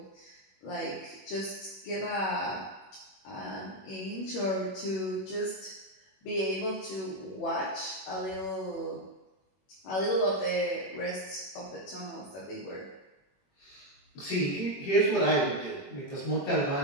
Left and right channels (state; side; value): late; right; 21 ms